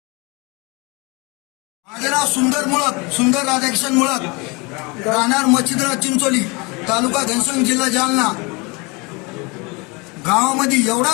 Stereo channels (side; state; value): right; quieter; 28.2 dB